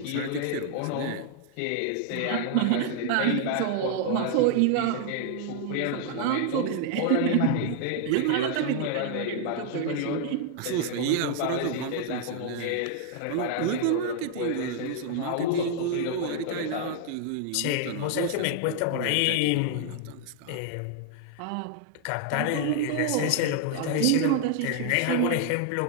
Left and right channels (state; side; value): different; both; correlation 0.00